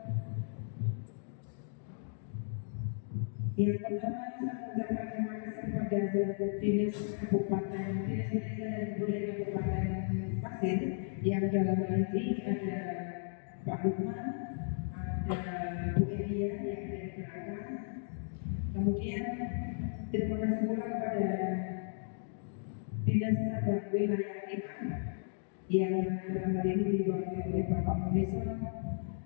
Yang pertama, saya mengucapkan terima kasih kepada Dinas Kabupaten, Dinas Pendidikan dan Kebudayaan Kabupaten Pasir yang dalam hal ini ada Pak Lukman, ada Bu Elia yang ada di belakang. Kemudian terima kasih pula kepada Dinas Tata Wilayah 5 yang dalam hal ini diwakili oleh Bapak Munison,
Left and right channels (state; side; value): silent; right; digital silence